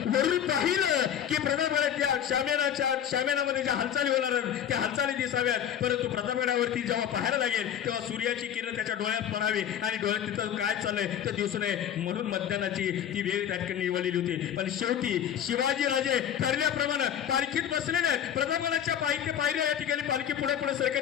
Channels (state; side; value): quieter; right; 9.7 dB